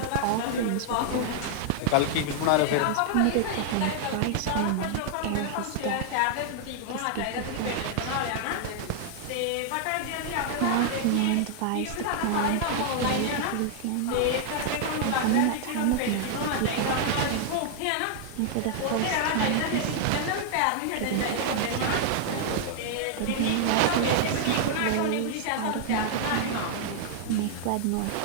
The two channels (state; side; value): different; both; correlation 0.00